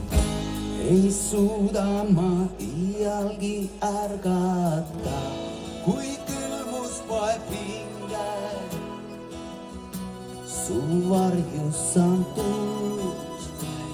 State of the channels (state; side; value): identical; both; correlation 1.00